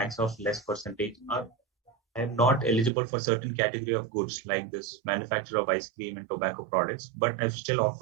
of less percentage, or I am not eligible for certain category of goods like this manufacture of ice cream and tobacco products, but I still opt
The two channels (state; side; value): drops out; left; at 2.9 s